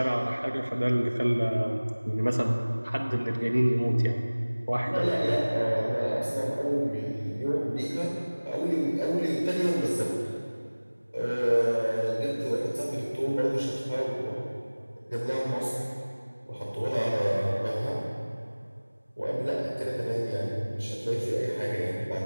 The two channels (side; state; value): both; inverted; correlation -1.00